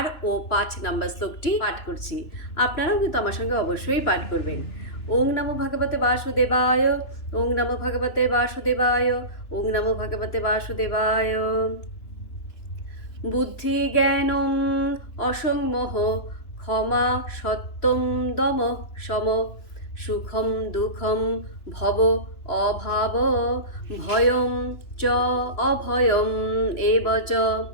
ও 5 নম্বর শ্লোকটি পাঠ করছি। আপনারাও কিন্তু আমার সঙ্গে অবশ্যই পাঠ করবেন। ওং নমো ভগবতে বাসুদেবায়, ওং নমো ভগবতে বাসুদেবায়, ওং নমো ভগবতে বাসুদেবায়। বুদ্ধি জ্ঞানম অসংমোহ, ক্ষমা সত্যম দম সম, সুখম দুঃখম ভব অভাব, ভয়ম চ অভয়ম এব চ,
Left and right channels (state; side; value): late; right; 2.9 ms